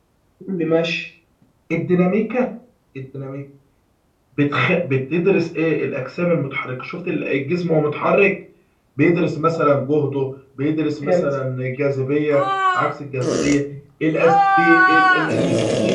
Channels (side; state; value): both; identical; correlation 1.00